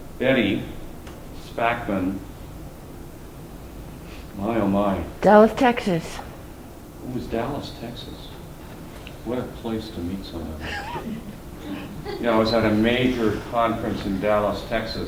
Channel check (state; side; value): identical; both; correlation 1.00